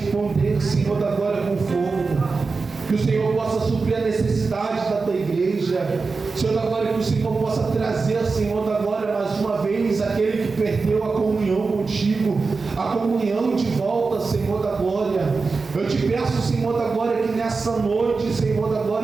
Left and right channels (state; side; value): quieter; left; 4.3 dB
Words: Senhor, agora com fogo. Que o Senhor possa suprir a necessidade da tua igreja. Senhor, agora que o Senhor possa trazer, Senhor, agora mais uma vez aquele que perdeu a comunhão contigo, a comunhão de volta, Senhor da glória. Eu te peço, Senhor da glória, que nessa noite, Senhor da